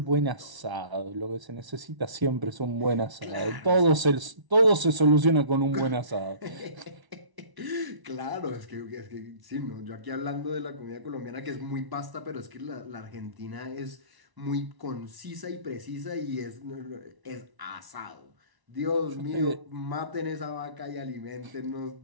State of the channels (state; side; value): late; left; 1.0 ms